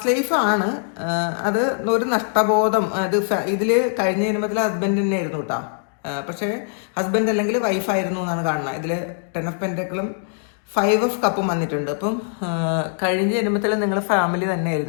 ലൈഫാണ്. അത് ഒരു നഷ്ടബോധം. അത് ഇതിൽ കഴിഞ്ഞ ജന്മത്തിൽ ഹസ്ബൻഡ് തന്നെ ആയിരുന്നു കേട്ടോ. പക്ഷേ ഹസ്ബൻഡ് അല്ലെങ്കിൽ വൈഫായിരുന്നു എന്നാണ് കാണുന്നത്. ഇതിൽ 10 ഓഫ് പെൻറ്റക്കിളും 5 ഓഫ് കപ്പും വന്നിട്ടുണ്ട്. അപ്പം കഴിഞ്ഞ ജന്മത്തിൽ നിങ്ങൾ ഫാമിലി തന്നെ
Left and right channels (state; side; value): silent; right; digital silence